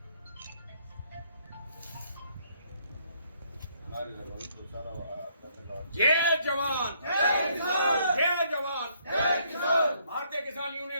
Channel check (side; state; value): both; inverted; correlation -0.68